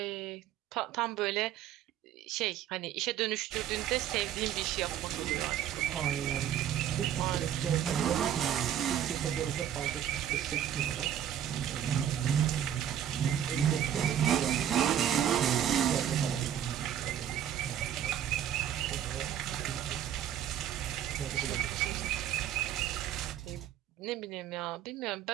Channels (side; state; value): left; quieter; 10.2 dB